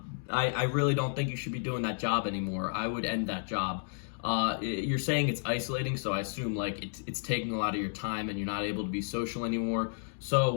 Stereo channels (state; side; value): silent; right; digital silence